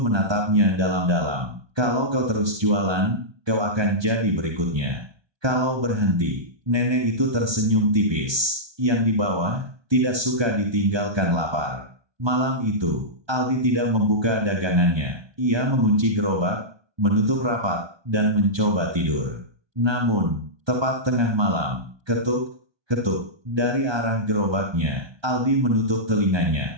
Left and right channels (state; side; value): late; left; 1.2 ms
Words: dalam-dalam. Kalau kau terus jualan, kau akan jadi berikutnya. Kalau berhenti, nenek itu tersenyum tipis. Yang di bawah, tidak suka ditinggalkan lapar. Malam itu, Aldi tidak membuka dagangannya. Ia mengunci gerobak, menutup rapat, dan mencoba tidur. Namun, tepat tengah malam, ketuk, ketuk, dari arah gerobaknya. Aldi menutup